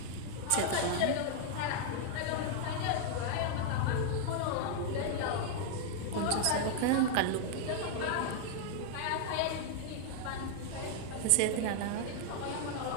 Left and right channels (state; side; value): different; both; correlation 0.00